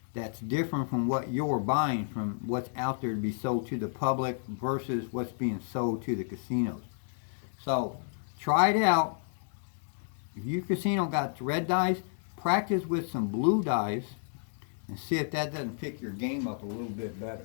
that's different from what you're buying, from what's out there to be sold to the public versus what's being sold to the casinos. So try it out. If your casino got red dice, practice with some blue dice and see if that doesn't pick your game up a little bit better.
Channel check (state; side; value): silent; right; digital silence